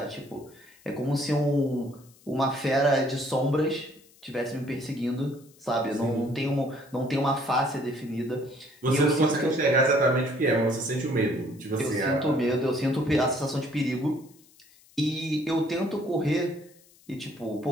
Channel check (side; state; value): left; noise; hiss, 28 dB below the sound